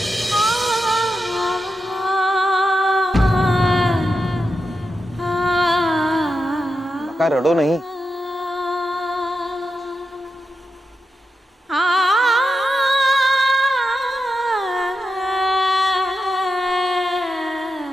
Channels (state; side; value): normal; both; correlation 0.87